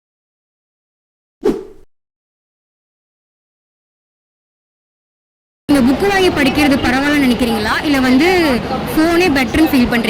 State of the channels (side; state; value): both; identical; correlation 1.00